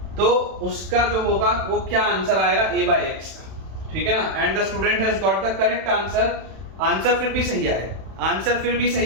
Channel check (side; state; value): left; late; 31 ms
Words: तो उसका जो होगा वो क्या आंसर आएगा a by x का, ठीक है ना। And the student has got the correct answer, answer फिर भी सही आया है, आंसर फिर भी